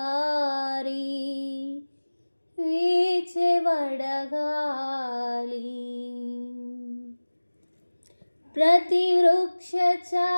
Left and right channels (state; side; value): inverted; both; correlation -1.00